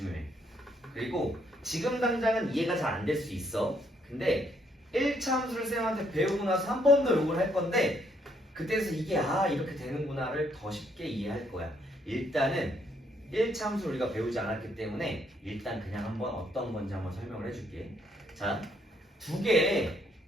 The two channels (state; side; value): normal; both; correlation 0.71